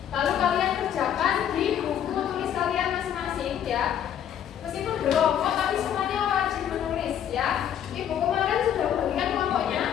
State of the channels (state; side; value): quieter; right; 9.7 dB